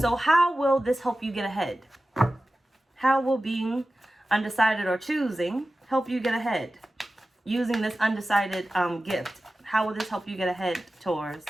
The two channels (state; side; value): normal; both; correlation 0.95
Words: how will this help you get ahead? How will being undecided or choosing help you get ahead? Using this undecided gift. How will this help you get ahead, Taurus?